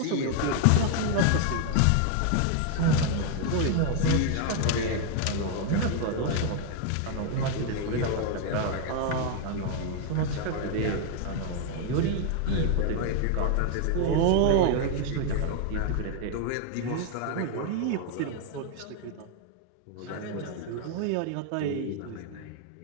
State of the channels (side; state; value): both; different; correlation 0.00